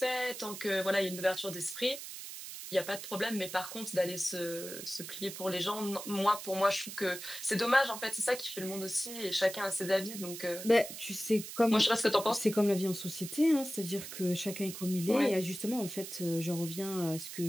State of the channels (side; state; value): right; noise; hiss, 10 dB below the sound